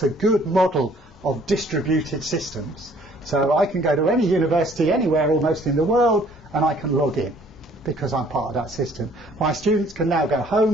a good model of distributed systems. So I can go to any university anywhere almost in the world, and I can log in because I'm part of that system. My students can now go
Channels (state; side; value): normal; both; correlation 0.58